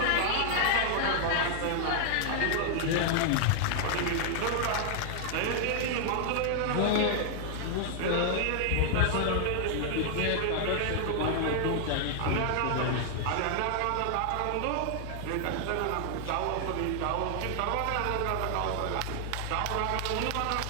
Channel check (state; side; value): different; both; correlation 0.00